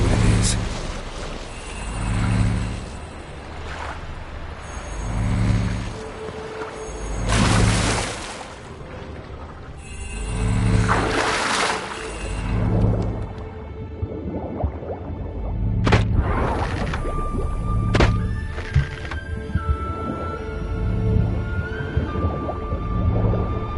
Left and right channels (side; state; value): both; identical; correlation 1.00